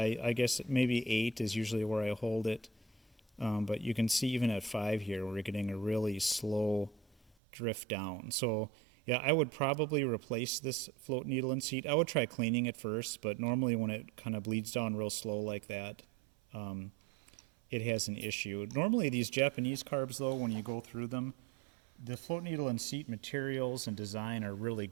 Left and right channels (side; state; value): left; drops out; at 7.4 s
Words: I guess maybe 8 is usually where I hold it. But you can see even at 5 here, we're getting a really slow drift down. So yeah, I would probably replace this float needle and seat. I would try cleaning it first, but normally when it kind of bleeds down real slow like that, it has an issue. Normally these Japanese carbs though, when you go through them, the float needle and seat materials and design are really